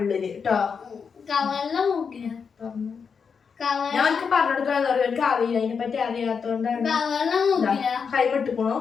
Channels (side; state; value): right; quieter; 6.0 dB